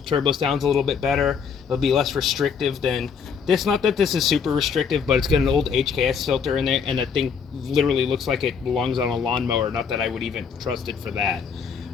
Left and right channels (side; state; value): right; quieter; 6.4 dB